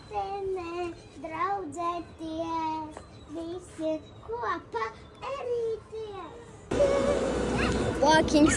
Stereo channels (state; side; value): identical; both; correlation 1.00